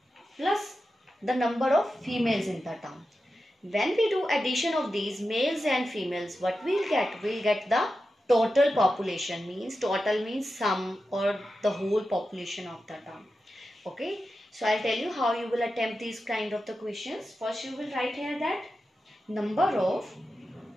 plus the number of females in the town. When we do addition of these males and females, what we'll get? We'll get the total population. Means total means sum or the whole population of the town. Okay, so I'll tell you how you will attempt these kind of the questions. First you will write here that number of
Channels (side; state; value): both; normal; correlation 0.91